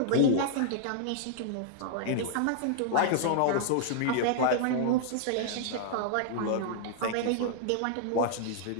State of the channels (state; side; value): different; both; correlation -0.01